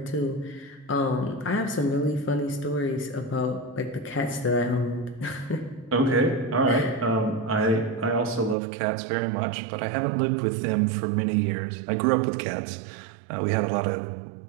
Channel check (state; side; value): drops out; left; at 8.6 s